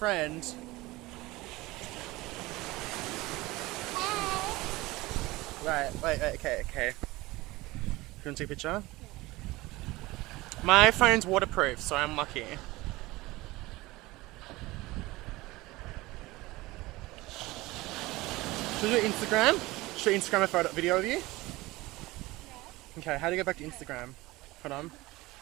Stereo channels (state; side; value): quieter; left; 20.2 dB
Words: Right, wait, okay. You want to take a picture? My phone's waterproof, so I'm lucky. Should we do Instagram? Should I Instagram a photo video of you? Okay, how do you go back to Instagram? Hold on.